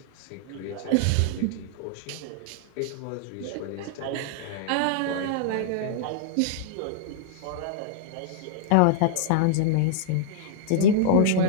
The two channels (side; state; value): both; different; correlation -0.01